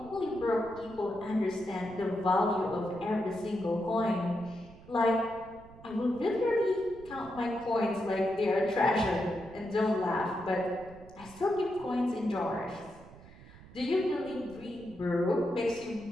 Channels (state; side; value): noise; right; rumble, 20 dB below the sound